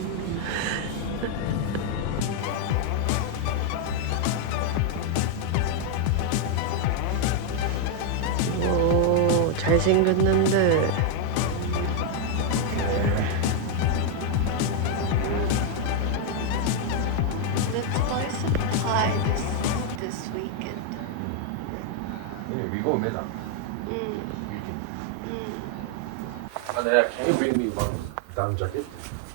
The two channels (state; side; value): different; both; correlation 0.00